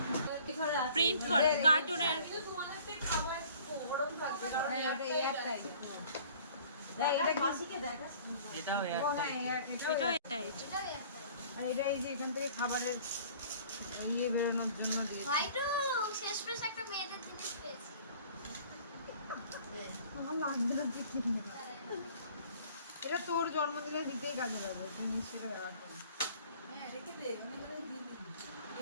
প্রিন্ট করা কার্টুনের তোমাদের খাবার গরম থাকবে কারণ এটা এয়ার টাইট এটা মাসিকে দেখাস এটাও ও হ্যাঁ এটাও এটাই। এটাও একটা আর এটা এই যে এখান থেকে খাবারের ইয়ে বেরোনোর জন্য দিয়েছি ভাই তো শেষমেশ একটা মেয়েদের জিনিস পেয়েছি আমার লাগবে না পিকনিক এটা তোর জন্মদিনে দিতেই কাজে লাগবে তুই নিশ্চয়ই ব্যবহার করবি হ্যাঁ রেখে দে আমি মানে দিয়ে দিই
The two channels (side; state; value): both; inverted; correlation -0.51